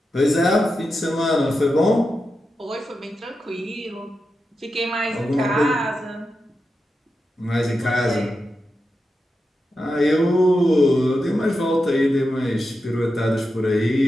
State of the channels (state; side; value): normal; both; correlation 0.89